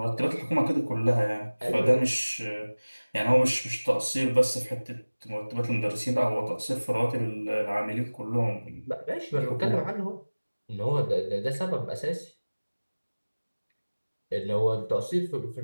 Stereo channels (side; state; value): both; inverted; correlation -1.00